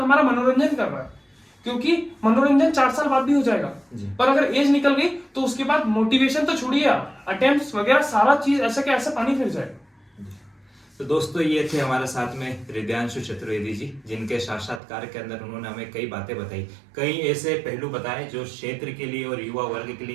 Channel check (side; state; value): left; drops out; at 14.8 s